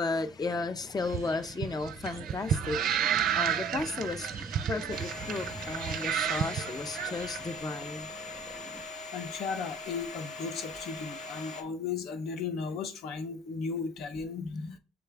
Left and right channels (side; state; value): both; normal; correlation 0.52